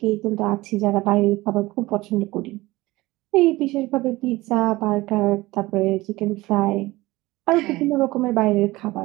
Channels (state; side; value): quieter; left; 19.5 dB